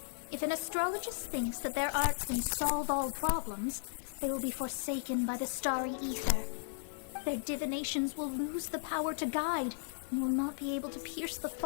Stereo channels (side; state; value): right; silent; digital silence